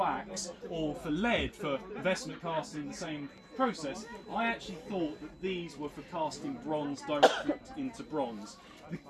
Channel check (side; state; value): both; identical; correlation 1.00